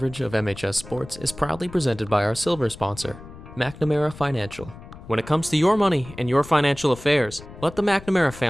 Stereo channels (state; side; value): noise; left; rumble, 17 dB below the sound